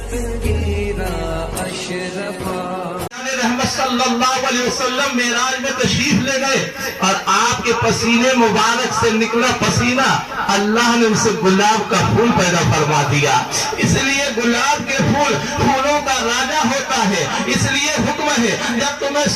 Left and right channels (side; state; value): both; identical; correlation 1.00